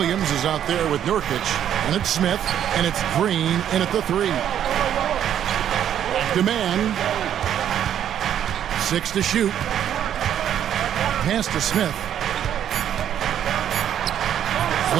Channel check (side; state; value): left; quieter; 10.0 dB